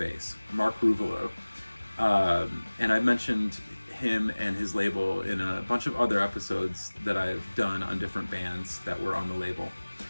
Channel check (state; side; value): inverted; both; correlation -1.00